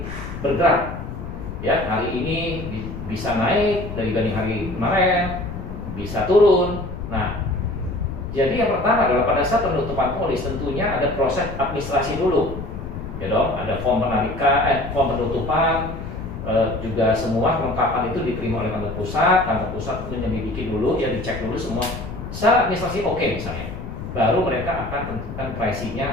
bergerak ya. Hari ini bisa naik dibanding hari kemarin, bisa turun. Nah jadi yang pertama adalah pada saat penutupan polis tentunya ada proses administrasi dulu ya dong. Ada form penarikan, form penutupan, juga semua kelengkapan itu diterima oleh kantor pusat. Kantor pusat menyelidiki dulu, ya dicek dulu semua secara administrasi oke misalnya, baru mereka akan tentukan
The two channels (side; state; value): left; noise; rumble, 8 dB below the sound